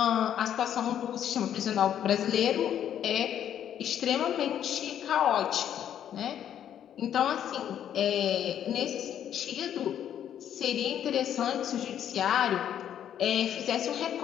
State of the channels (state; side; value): quieter; right; 10.0 dB